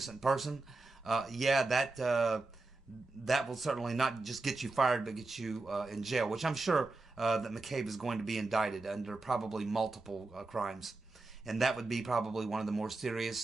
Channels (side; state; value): left; quieter; 3.3 dB